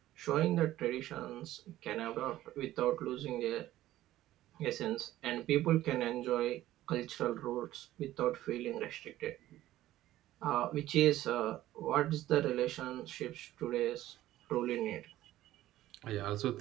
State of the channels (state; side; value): quieter; left; 14.6 dB